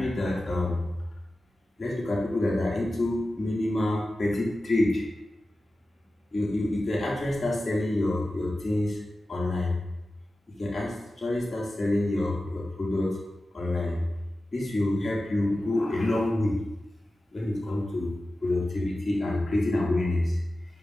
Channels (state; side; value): normal; both; correlation 0.94